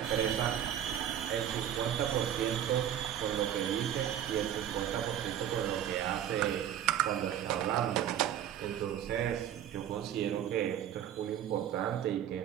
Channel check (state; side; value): quieter; left; 10.5 dB